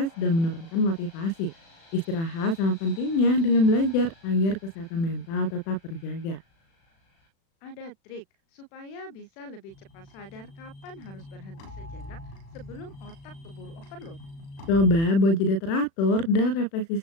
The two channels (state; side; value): late; right; 36 ms